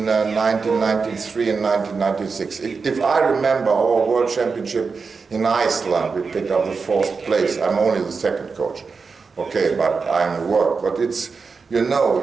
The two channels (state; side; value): quieter; left; 4.9 dB